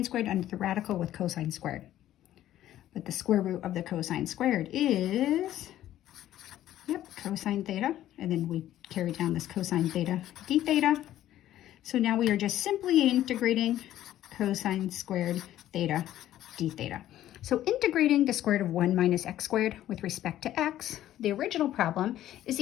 squared under the radical with cosine squared. But the square root of the cosine squared is, cosine theta. And then we carry down this cosine theta d theta. So now we are just simply integrating cosine squared theta d theta. So integrating the square root of 1 minus x squared with respect to x, the original problem, is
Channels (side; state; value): right; quieter; 12.9 dB